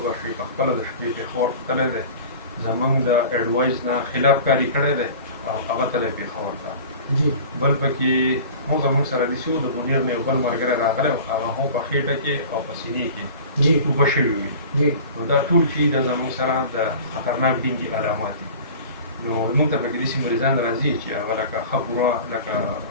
شوي په خپله د شپې پېښور تللی دی زموږ د اډوایز نه خلاف کاري کړی دی او هغه تللی پېښور ته. بل پکې هم زموږ سره داسې و د منیر نه یو بل ملګری راغلی و هغه هم په خېټه کې او په سینې کې اوبه شوي وي. نو دا ټول چې د زموږ سره د خطرناک ډینګي علامات دي. نو موږ ته پکې داسې مریضان راځي چې هغه لکه ښه پوره لکه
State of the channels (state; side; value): inverted; both; correlation -0.40